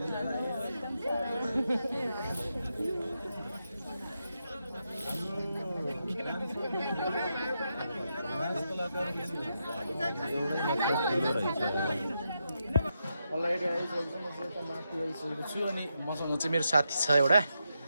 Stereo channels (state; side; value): inverted; both; correlation -0.85